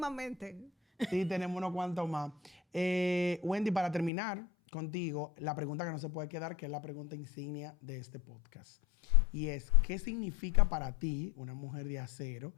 Sí, tenemos unos cuantos más. Wendy, para terminar contigo, la pregunta que no se puede quedar, que es la pregunta insignia de este podcast. Y es, ¿qué significa para ti, una mujer de acero,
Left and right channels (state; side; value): drops out; right; at 4.1 s